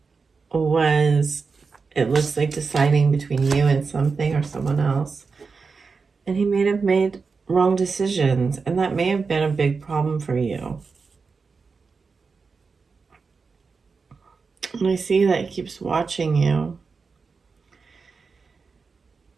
was, it looks like, deciding between you and something or someone else. And he may have made wrong decisions, and that may have been a big problem for you. And I see that he keeps watching you.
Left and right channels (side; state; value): left; quieter; 4.8 dB